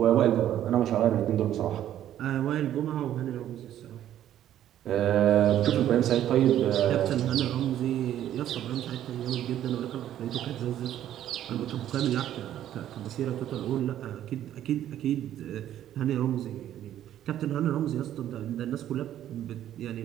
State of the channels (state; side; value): quieter; left; 11.6 dB